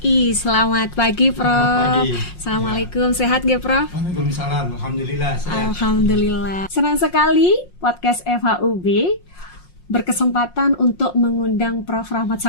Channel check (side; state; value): right; late; 5.6 ms